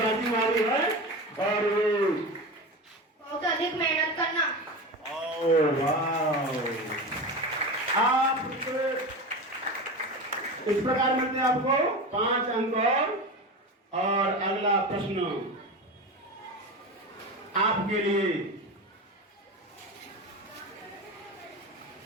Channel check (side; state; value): both; normal; correlation 0.26